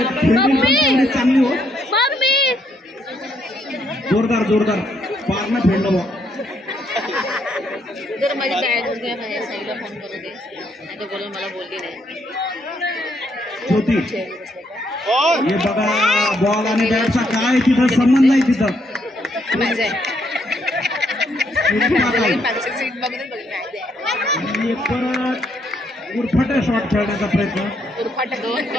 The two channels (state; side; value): normal; both; correlation 0.73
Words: फिल्डिंग चांगली हो. जोरदार पारनं फेडलं बॉ. जर माझी बॅग उद्या माझ्या साईडला फोन करू दे नाही तर बोलून मला बोलली नाही. ज्योती हे बघा बॉल आणि बॅटचा काय तिथं संबंध नाही. तिथं आणि परत उरफाटा शॉट खेळण्याचा प्रयत्न. उरफाटा 2